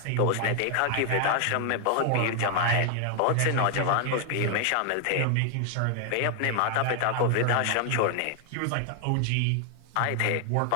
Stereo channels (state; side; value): different; both; correlation 0.00